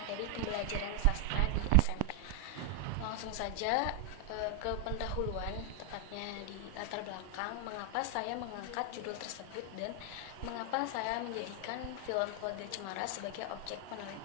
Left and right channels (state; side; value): different; both; correlation 0.00